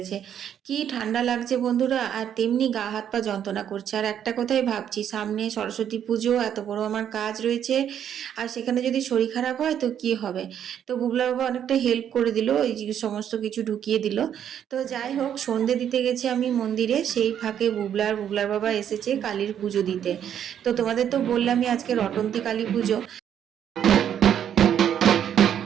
কি ঠান্ডা লাগছে বন্ধুরা, আর তেমনি গা হাত পা যন্ত্রণা করছে। আর একটা কথাই ভাবছি, সামনে সরস্বতী পুজো, এত বড় আমার কাজ রয়েছে, আর সেখানে যদি শরীর খারাপ হয় তো কি হবে। তো বুবলা বাবা অনেকটা হেল্প করে দিল, এই যে সমস্ত কিছু ঢুকিয়ে দিল। তো যাই হোক, সন্ধে দিতে গেছি আমি মন্দিরে, সেই ফাঁকে বুবলার বাবা এসেছে কালীর পুজো দিতে। তো তোমাদের তো বললামই আজকে রটন্তী কালী পুজো।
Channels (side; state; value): left; quieter; 9.4 dB